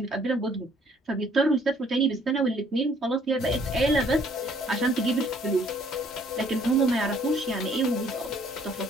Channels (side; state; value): both; normal; correlation 0.62